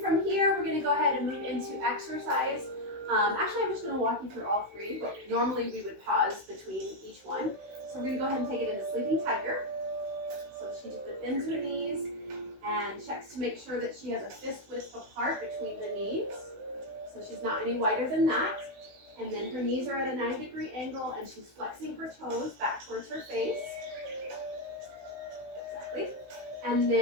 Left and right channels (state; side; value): late; left; 16 ms